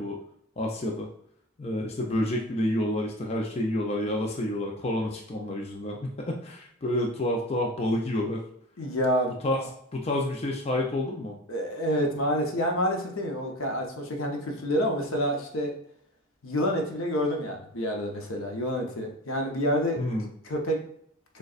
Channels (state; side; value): normal; both; correlation 0.33